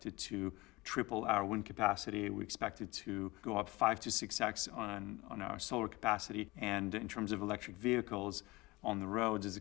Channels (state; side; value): quieter; right; 22.1 dB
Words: to triple our wind capacity. We expected to go up 5 to 6x on our solar capacity. And in terms of electric vehicles on the roads, is